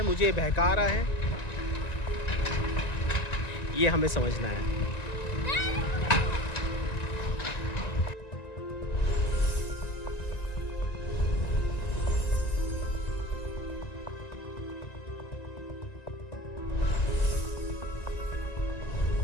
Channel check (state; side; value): late; right; 1.9 ms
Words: मुझे बहका रहा है। ये हमें समझना है।